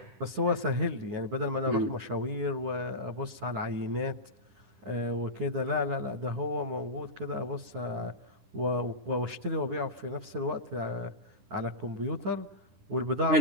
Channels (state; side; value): late; left; 10 ms